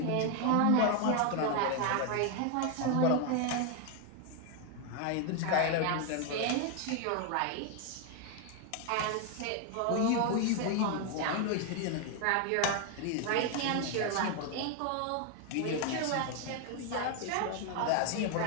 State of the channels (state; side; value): different; both; correlation 0.01